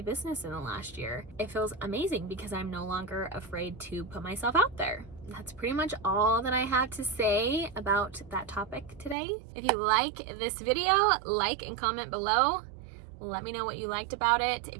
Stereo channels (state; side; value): drops out; left; at 9.2 s